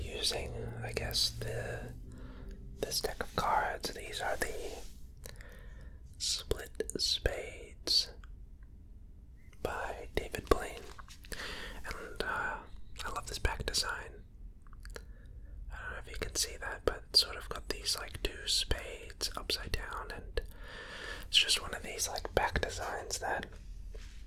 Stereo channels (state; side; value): identical; both; correlation 1.00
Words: using, I guess, the this deck of cards. These are the Split Spades by David Blaine. And I love this back design. I don't know if you can see that, but it's sort of got these like two spades upside down, and it's just one of these like back designs that